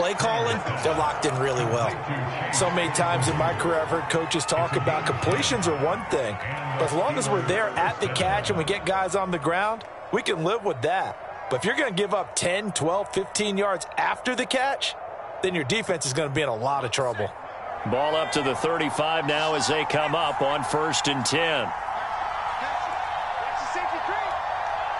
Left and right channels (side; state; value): both; identical; correlation 1.00